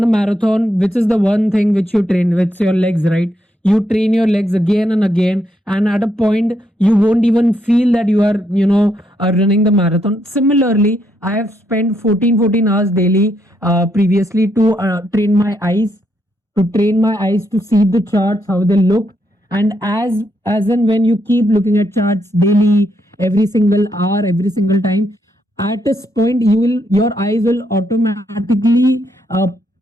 a marathon, which is the one thing which you train with your legs, right? You train your legs again and again, and at a point, you won't even feel that you are, running the marathon. Similarly, I have spent 14 hours daily previously to train my eyes to see the charts how they look, and as and when you keep looking at charts daily, every single hour, every single time, at this point your eyes will automatically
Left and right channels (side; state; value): both; normal; correlation 0.77